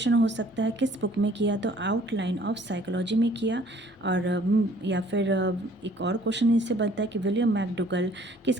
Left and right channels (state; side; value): normal; both; correlation 0.57